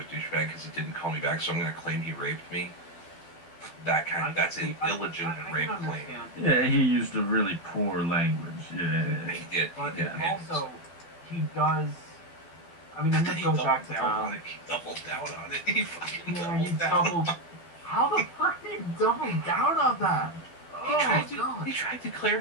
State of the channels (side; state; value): right; late; 12 ms